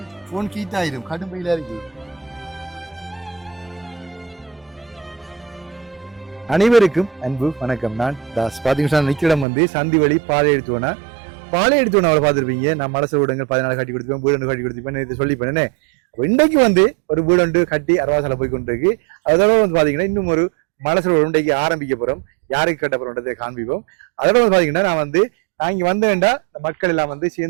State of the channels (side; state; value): left; drops out; at 9.5 s